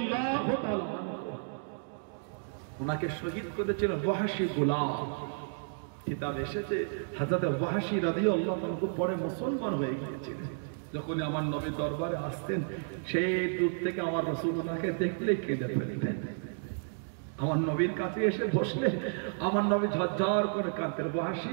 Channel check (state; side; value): silent; left; digital silence